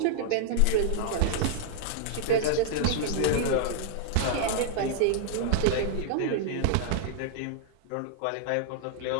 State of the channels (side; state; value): both; different; correlation 0.00